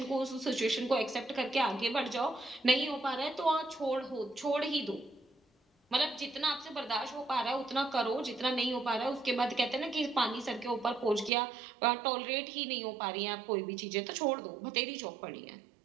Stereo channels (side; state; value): left; drops out; at 11.3 s